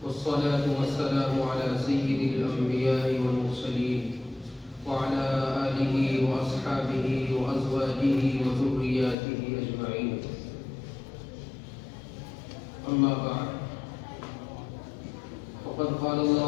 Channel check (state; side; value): drops out; right; at 9.2 s